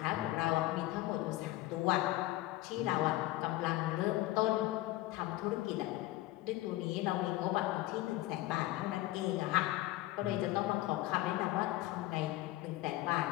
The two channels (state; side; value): quieter; right; 17.0 dB